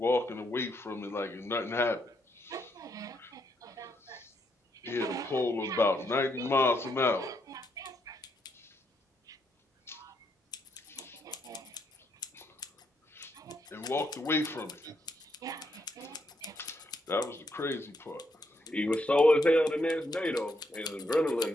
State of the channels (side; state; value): both; normal; correlation 0.77